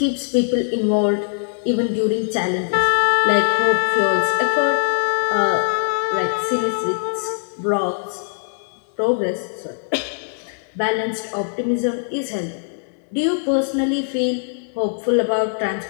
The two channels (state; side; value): silent; right; digital silence